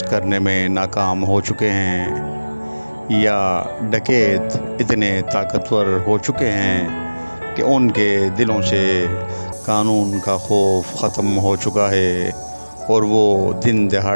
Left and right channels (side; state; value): both; inverted; correlation -1.00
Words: करने में नाकाम हो चुके हैं, या डकैत इतने ताकतवर हो चुके हैं कि उनके दिलों से कानून का खौफ ख़त्म हो चुका है और वो दिन